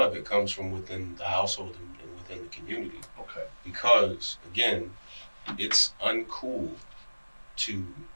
of it comes from within the household and within the community. Okay. Because, again, it's uncool to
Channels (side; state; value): both; inverted; correlation -1.00